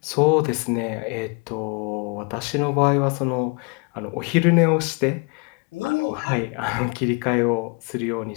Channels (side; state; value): right; quieter; 31.8 dB